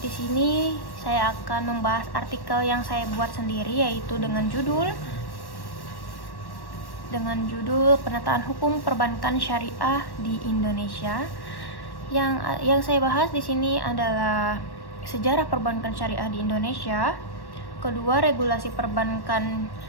Di sini saya akan membahas artikel yang saya buat sendiri, yaitu dengan judul Penataan Hukum Perbankan Syariah di Indonesia. Yang saya bahas di sini adalah sejarah perbankan syariah di Indonesia, kedua regulasi perbankan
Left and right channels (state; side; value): late; right; 1.1 ms